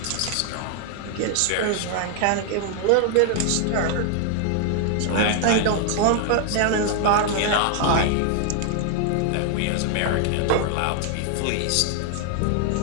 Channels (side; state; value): both; different; correlation 0.00